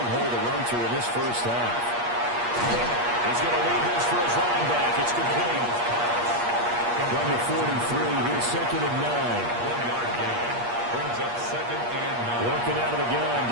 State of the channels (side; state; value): left; late; 8.4 ms